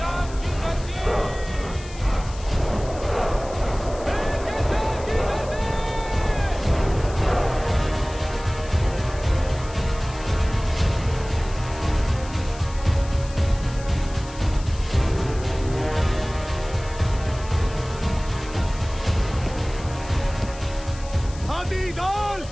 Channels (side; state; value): left; noise; hiss, 18 dB below the sound